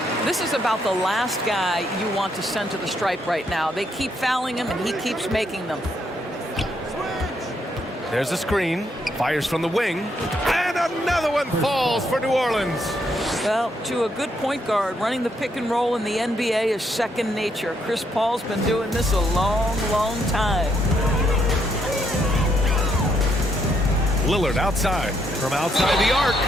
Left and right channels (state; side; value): normal; both; correlation 0.75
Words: This is about the last guy you want to send to the stripe right now. They keep fouling him, and he keeps making them. There's a screen. Fires from the wing. And another one falls for New Orleans. Well, to a good point guard, running the pick and roll in the NBA is second nature. Chris Paul's been doing this a long, long time. Lillard outside. From outside the arc.